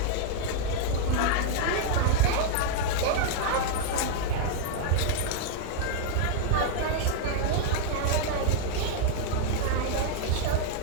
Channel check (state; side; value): different; both; correlation -0.01